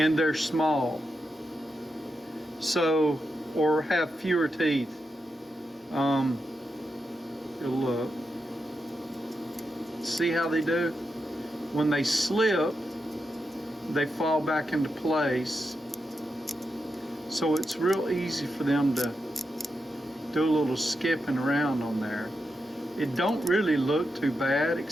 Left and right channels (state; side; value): normal; both; correlation 0.86